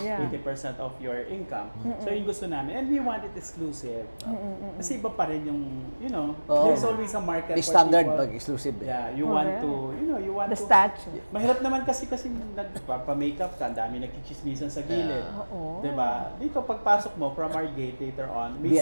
80% of your income. So yung gusto namin, and we want it exclusive. Kasi iba pa rin yung, Oo. there's always a market May for standard people. pag exclusive eh. Yeah, you want Correct. to, you want The to. statue. Mahirap naman kasi nagpapa-makeup ka, ang dami nagchichismisan sa gilid. Oo. Diba? Dito pagpasok mo from our gate later on, may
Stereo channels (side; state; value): both; inverted; correlation -1.00